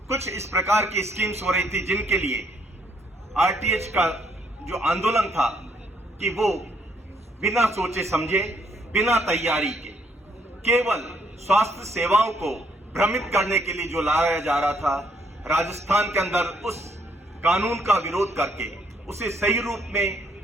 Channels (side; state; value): both; normal; correlation 0.70